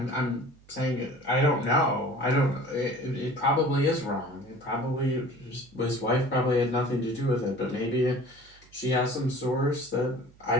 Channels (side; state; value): right; noise; hum, 27 dB below the sound